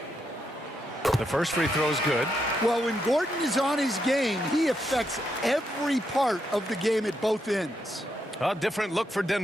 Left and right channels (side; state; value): both; normal; correlation 0.80